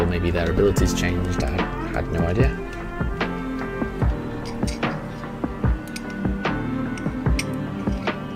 maybe their abilities changed. I had no idea.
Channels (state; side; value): identical; both; correlation 1.00